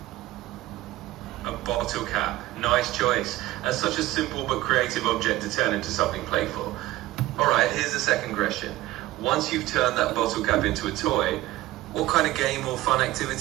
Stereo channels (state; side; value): quieter; left; 16.7 dB